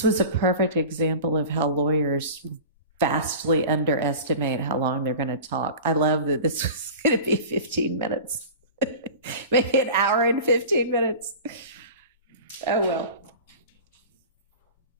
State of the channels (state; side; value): inverted; both; correlation -0.35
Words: was a perfect example of how lawyers vastly underestimate how long they're going to talk. I love that this was going to be 15 minutes, maybe an hour and 15 minutes. Oh, well.